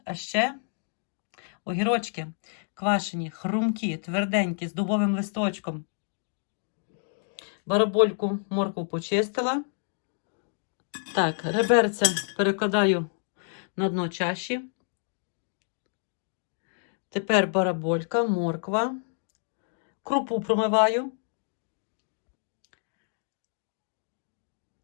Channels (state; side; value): silent; right; digital silence